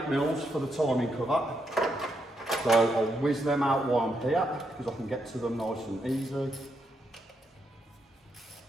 for the timing cover. So I'll whiz them out while I'm here, because I can get to them nice and easy.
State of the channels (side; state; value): both; normal; correlation 0.80